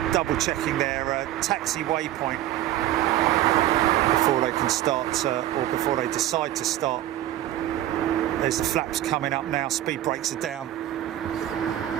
double checking their taxi waypoint before they can start or before they decide to start. There's the flaps coming up now, speed brakes are down.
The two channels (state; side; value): quieter; left; 13.3 dB